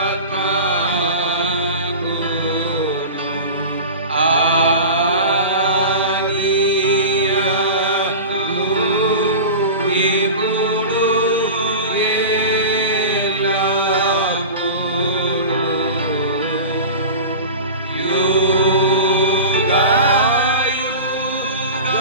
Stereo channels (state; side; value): inverted; both; correlation -0.32